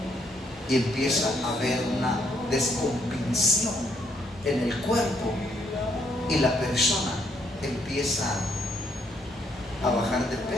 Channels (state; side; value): normal; both; correlation 0.72